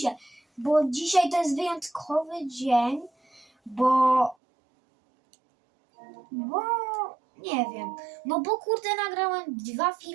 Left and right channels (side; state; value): left; drops out; at 4.4 s